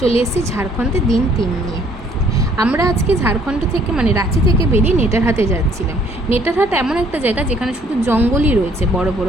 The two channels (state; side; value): normal; both; correlation 0.62